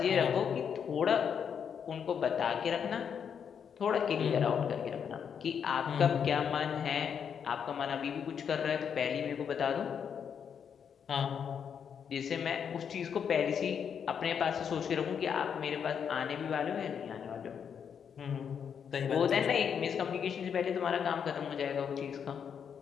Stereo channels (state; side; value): quieter; right; 7.5 dB